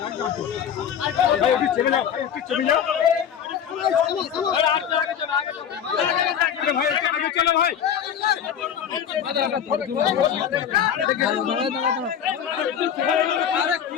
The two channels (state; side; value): quieter; right; 8.6 dB